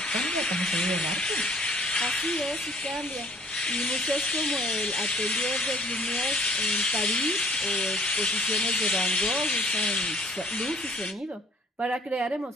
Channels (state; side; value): normal; both; correlation 0.57